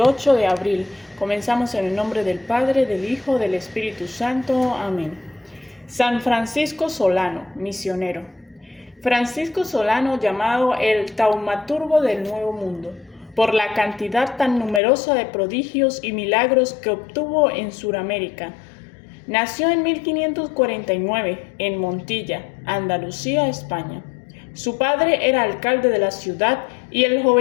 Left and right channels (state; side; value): drops out; right; at 14.8 s